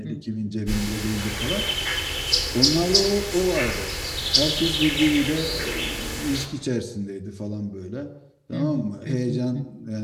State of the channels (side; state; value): both; identical; correlation 1.00